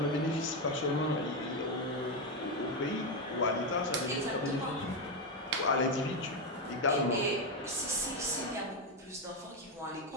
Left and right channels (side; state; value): both; normal; correlation 0.07